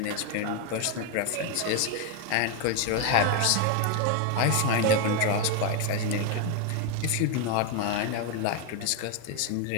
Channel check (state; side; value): different; both; correlation 0.01